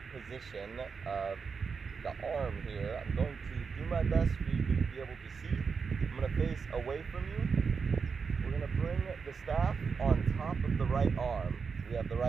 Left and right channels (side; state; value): left; quieter; 5.5 dB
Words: position of the arm here. I'm going to do my best for you to be able to see. I'm going to face away from you. We're going to bring the staff on top of the right arm. We have the